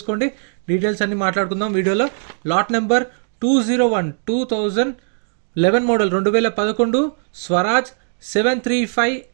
డీటెయిల్స్ అన్ని మాట్లాడుకుందాం వీడియోలో. Lot number 201 2011 model 2011 Swaraj 735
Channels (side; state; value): left; silent; digital silence